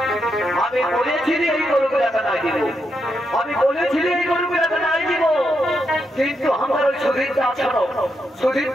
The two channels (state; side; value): normal; both; correlation 0.82